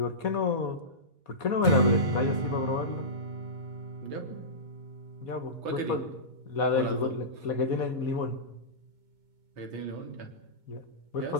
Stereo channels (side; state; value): left; late; 2.2 ms